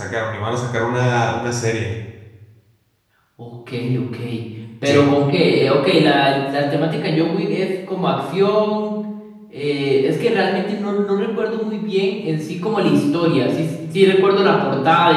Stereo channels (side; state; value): both; identical; correlation 1.00